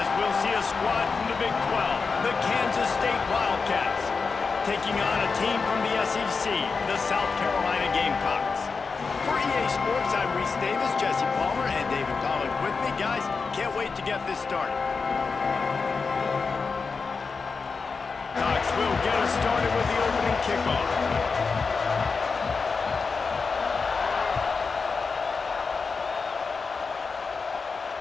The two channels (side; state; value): right; quieter; 4.8 dB